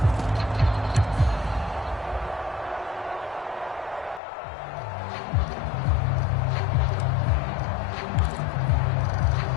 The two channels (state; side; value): drops out; right; at 4.2 s